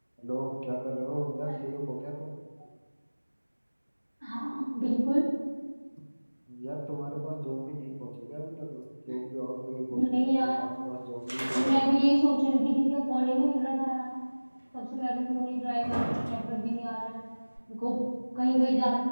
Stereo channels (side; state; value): both; inverted; correlation -1.00